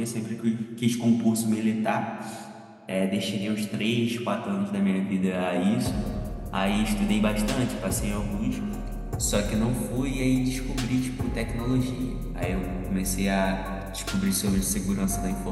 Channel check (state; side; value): identical; both; correlation 1.00